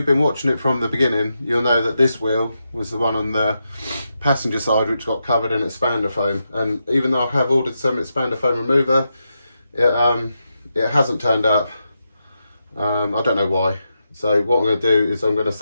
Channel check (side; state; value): both; inverted; correlation -0.86